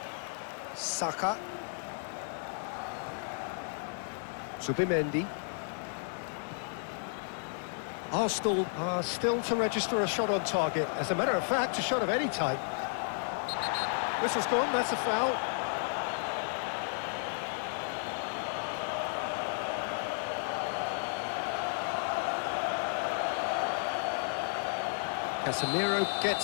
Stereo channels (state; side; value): silent; right; digital silence